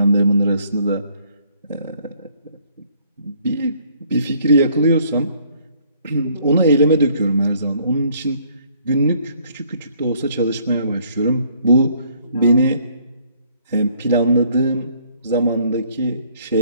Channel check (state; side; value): inverted; both; correlation -0.63